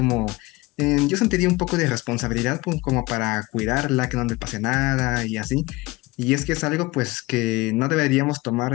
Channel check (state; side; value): quieter; right; 21.9 dB